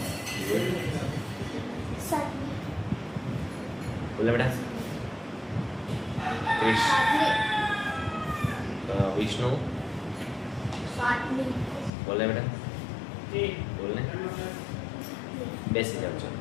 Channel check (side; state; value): right; drops out; at 11.9 s